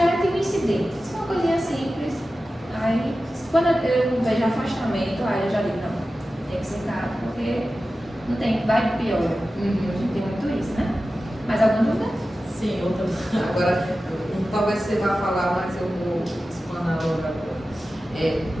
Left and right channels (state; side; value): normal; both; correlation 0.94